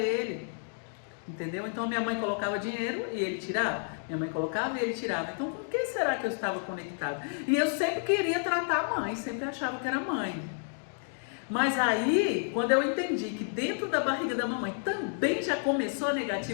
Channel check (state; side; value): silent; right; 57 dB below the other